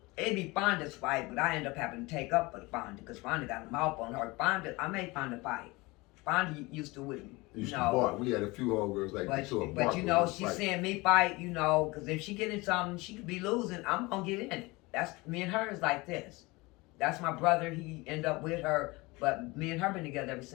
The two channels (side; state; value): right; quieter; 23.4 dB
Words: it'd be Fonda's fight, but I ended up having to take up for the Fonda because Fonda got a mouth on her. I made Fonda fight. Fonda used to with me. Used to bark. We had a few homegirls like that too. But she's seeing me fight, because if she get in something, she could be losing. I'm gonna get in it. That's me and her is like this. That's my brother. He ended up with her, but me and her been together ever